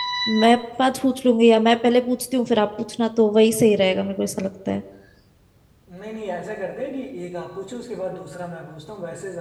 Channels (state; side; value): identical; both; correlation 1.00